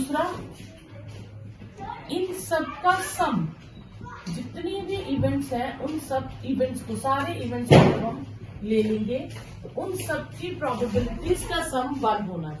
इन सब का सम, जितनी भी इवेंट्स हैं उन सब इवेंट्स को, सारे इवेंट्स को जब हम ले लेंगे तो उन सब की प्रोबेबिलिटीज का सम 1 होना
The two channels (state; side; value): identical; both; correlation 1.00